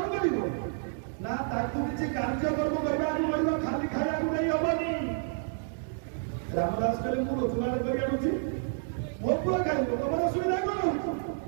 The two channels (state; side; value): silent; left; digital silence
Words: କରିବ ନା ତାକୁ କିଛି କାର୍ଯ୍ୟକ୍ରମ କରିବାକୁ ପଡିବ ଖାଲି ଖାଇବାକୁ ନେଇ ହବନି। ରାମଦାସ କହିଲେ ମୁଁ ରୋଜଗାର କରି ଆଣୁଛି ମୋ ପୁଅ ଖାଇବ ତମର ଅସୁବିଧା କଣ